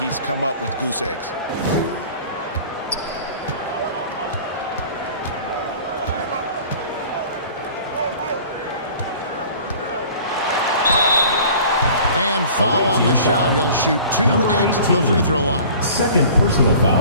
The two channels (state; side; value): inverted; both; correlation -0.46